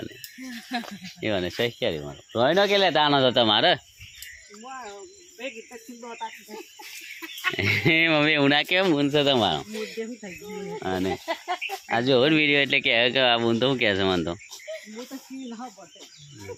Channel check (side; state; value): both; identical; correlation 1.00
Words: એવાને સહી ક્યારે મારો રોઈ ન કે લેતા આનો તો તમારે મમ્મી એવું ના કેમ બૂન છે તમારો અને આ જો વિડીયો એટલે કે આ બૂન તો શું કહે છે મને તો